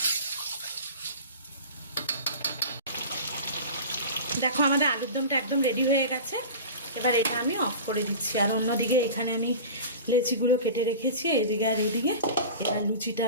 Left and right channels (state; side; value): inverted; both; correlation -0.34